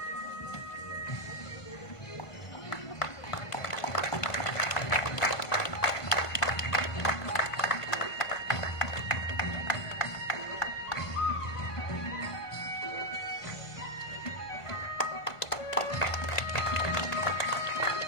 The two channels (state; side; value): late; right; 1.5 ms